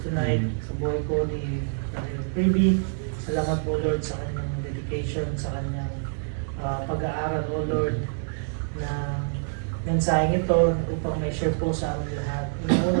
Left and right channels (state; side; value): silent; left; digital silence